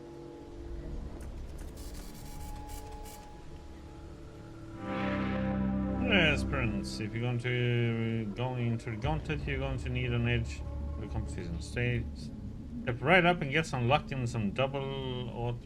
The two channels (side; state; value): both; identical; correlation 1.00